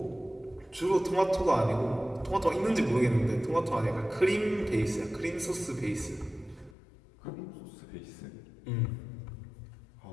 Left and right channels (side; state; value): right; drops out; at 6.8 s